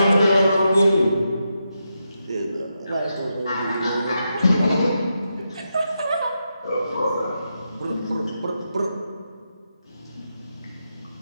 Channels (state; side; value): inverted; both; correlation -0.85